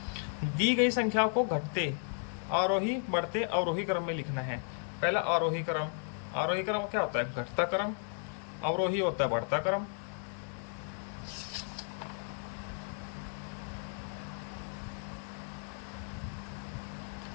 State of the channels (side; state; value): right; silent; 55 dB below the other